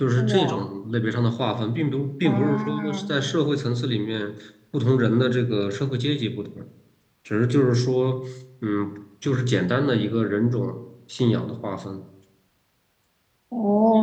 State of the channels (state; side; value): identical; both; correlation 1.00